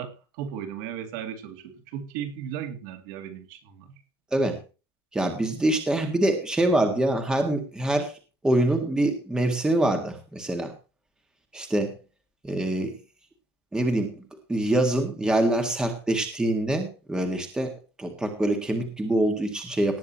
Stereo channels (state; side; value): normal; both; correlation 0.76